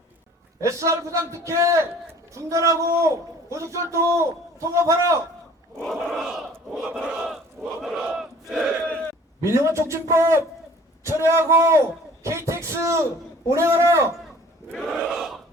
SR 부당 특혜 중단하고 고속철도 통합하라. 민영화 촉진법 철회하고 KTX 운행하라.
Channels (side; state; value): both; normal; correlation 0.51